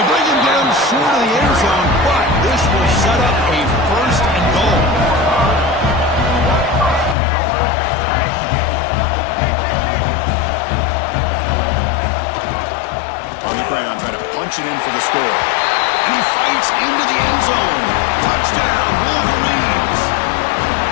bring him down short of the end zone, but this will set up a first and goal. Ground, trying to punch it in for the score. And he fights into the end zone. Touchdown, Wolverines.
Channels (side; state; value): right; drops out; at 7.2 s